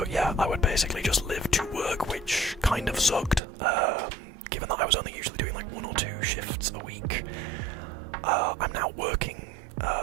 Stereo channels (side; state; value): left; drops out; at 3.4 s